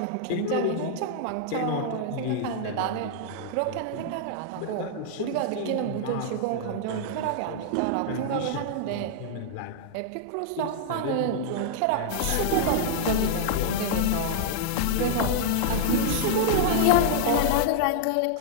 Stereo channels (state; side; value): different; both; correlation -0.01